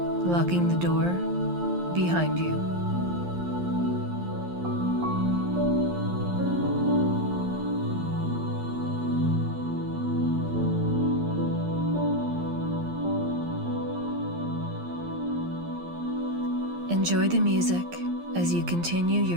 Locking the door behind you. Enjoy the music as you continue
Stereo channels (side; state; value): left; late; 11 ms